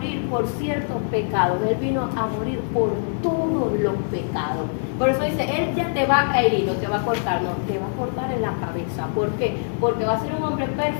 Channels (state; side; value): silent; right; digital silence